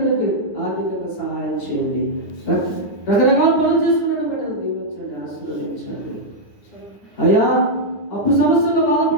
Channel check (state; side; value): late; right; 9.7 ms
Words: ఆర్థికంగా సహాయం చేయండి. రకరకాల పనులు చేసుకున్న బిడ్డలు దీవించండి, ఆశీర్వదించండి అయ్యా. అప్పు సమస్యల్లో